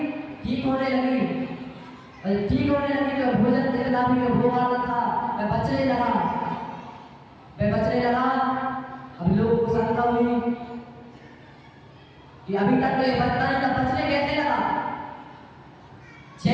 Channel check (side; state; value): both; identical; correlation 1.00